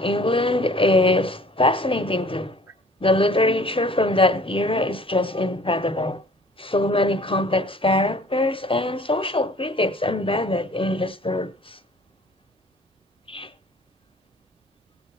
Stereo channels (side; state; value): both; normal; correlation 0.51